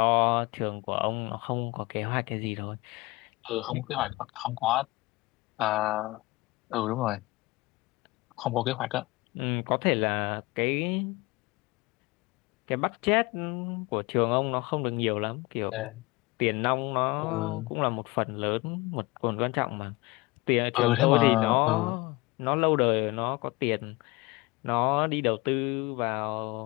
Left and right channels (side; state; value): right; quieter; 22.6 dB